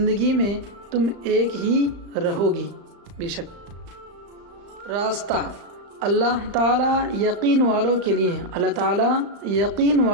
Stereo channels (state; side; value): late; left; 35 ms